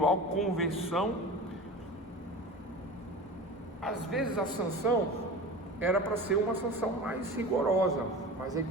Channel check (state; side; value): normal; both; correlation 0.33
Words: conversão. Às vezes a sanção era para ser uma sanção mais rigorosa, mas aí